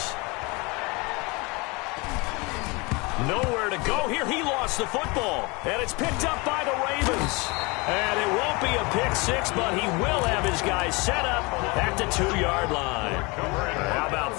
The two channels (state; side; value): quieter; right; 26.9 dB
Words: Nowhere to go here. He lost the football. And it's picked up by the Ravens. And it won't be a pick six, but he will have his guys set up at the 2-yard line. How about